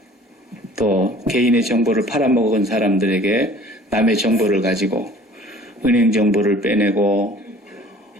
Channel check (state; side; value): normal; both; correlation 0.49